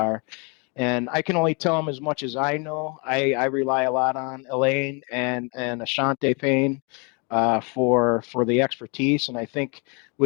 And I can only tell them as much as I know. I rely a lot on Elaine and Ashante Payne for the expertise. And I think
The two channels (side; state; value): right; quieter; 33.1 dB